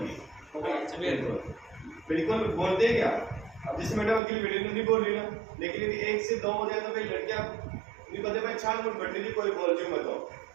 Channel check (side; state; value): left; drops out; at 4.2 s